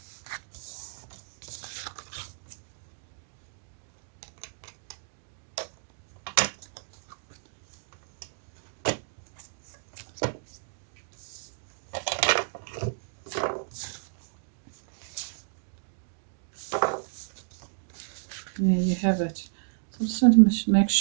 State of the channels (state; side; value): silent; left; digital silence